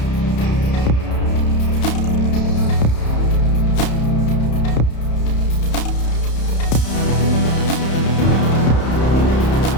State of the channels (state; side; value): late; right; 31 ms